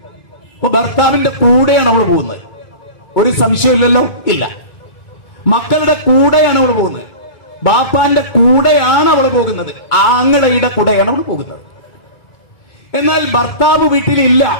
അപ്പൊ ഭർത്താവിന്റെ കൂടെയാണ് അവൾ പോകുന്നത്, ഒരു സംശയമില്ലല്ലോ, ഇല്ല. മക്കളുടെ കൂടെയാണ് അവൾ പോകുന്നത്, ബാപ്പാന്റെ കൂടെയാണ് അവൾ പോകുന്നത്, ആങ്ങളയുടെ കൂടെയാണ് അവൾ പോകുന്നത്. എന്നാൽ ഭർത്താവ് വീട്ടിലില്ല,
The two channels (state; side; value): late; right; 2.2 ms